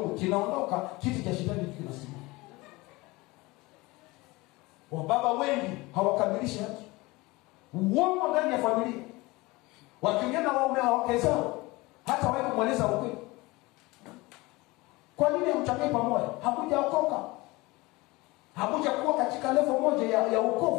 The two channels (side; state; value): right; quieter; 22.3 dB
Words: kinaondoka, kiti cha shetani kinasimama. Wababa wengi hawakamilishi haki. Uongo ndani ya familia. Wakiongea na wake zao, hata wao kumweleza ukweli. Kwa nini hamchangie pamoja? Hakujaokoka. Hakujakuwa katika level moja ya